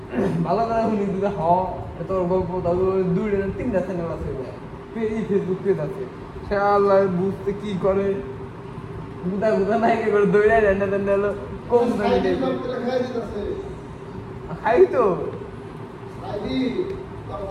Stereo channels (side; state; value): both; identical; correlation 1.00